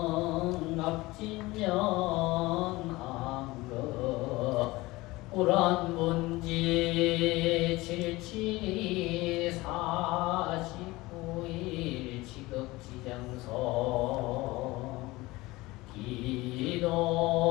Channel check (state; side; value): quieter; right; 20.6 dB